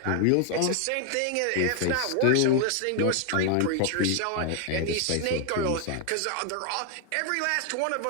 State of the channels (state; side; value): different; both; correlation 0.00